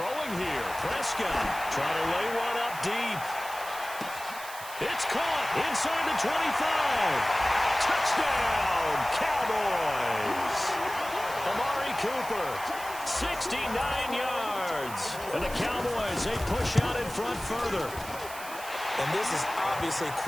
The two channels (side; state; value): right; noise; hiss, 13 dB below the sound